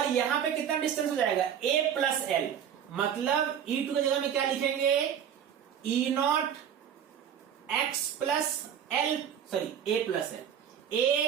यहां पे कितना डिस्टेंस हो जाएगा a प्लस एल, मतलब E2 की जगह में क्या लिखेंगे E0 x plus L, sorry a plus L,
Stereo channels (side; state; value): left; quieter; 8.9 dB